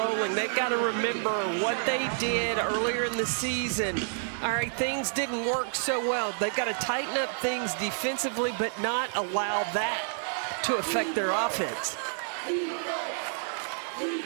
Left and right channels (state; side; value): silent; left; digital silence